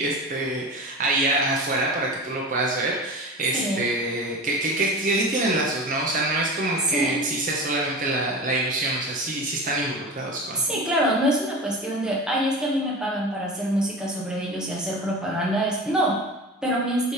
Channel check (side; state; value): both; normal; correlation 0.30